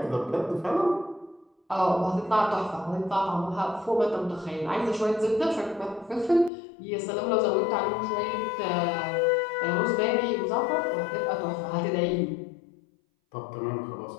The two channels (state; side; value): drops out; right; at 6.5 s